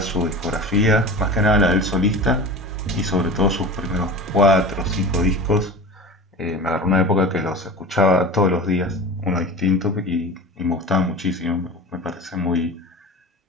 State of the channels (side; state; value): both; normal; correlation 0.34